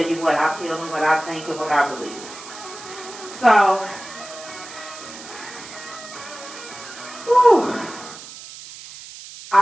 you what I feel and what I think and what I believe. So, whew,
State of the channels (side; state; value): right; noise; hiss, 14 dB below the sound